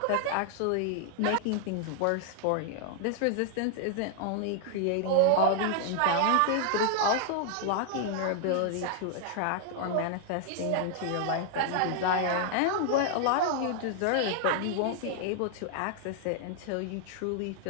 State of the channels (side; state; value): both; different; correlation 0.00